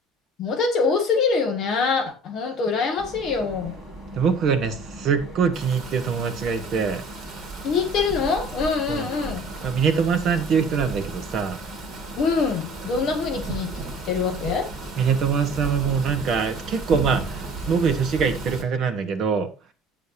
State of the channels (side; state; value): both; normal; correlation 0.47